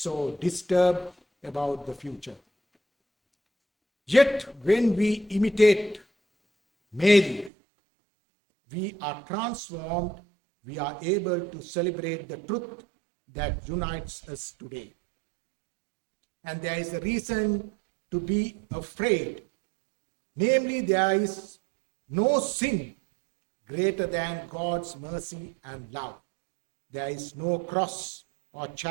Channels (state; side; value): drops out; left; at 7.5 s